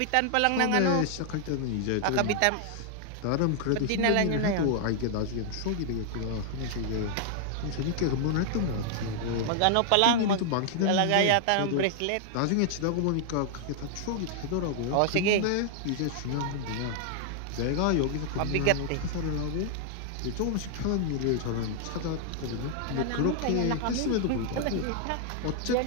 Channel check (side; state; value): both; different; correlation 0.00